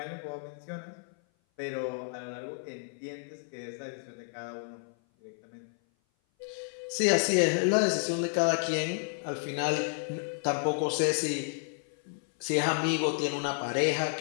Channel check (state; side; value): silent; right; 55 dB below the other